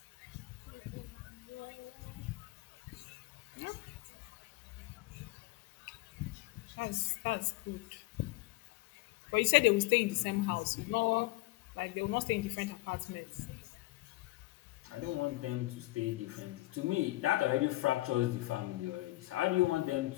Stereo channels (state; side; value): quieter; right; 19.3 dB